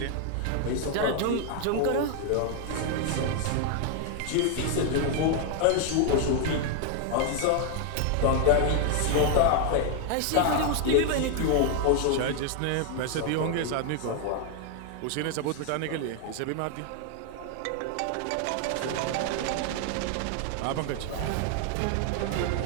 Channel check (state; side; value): different; both; correlation 0.00